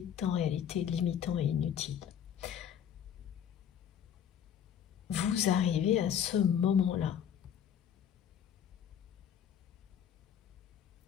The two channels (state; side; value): quieter; right; 8.9 dB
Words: en réalité limitant et inutile. Vous arrivez à ce moment-là.